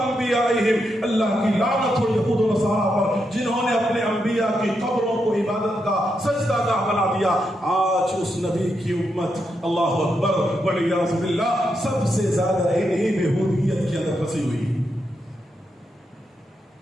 اللہ کی لعنت ہو یہود و نصارہ پر جنہوں نے اپنے انبیاء کی قبروں کو عبادت کا سجدہ گاہ بنا دیا۔ آج اس نبی کی امت، اللہ اکبر والعیاذ باللہ، سب سے زیادہ انہی بےہودگیت کے اندر پھنسی ہوئی۔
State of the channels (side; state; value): both; normal; correlation 0.83